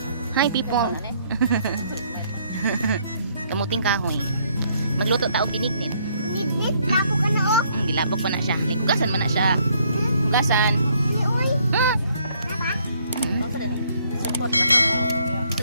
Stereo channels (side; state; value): both; inverted; correlation -0.67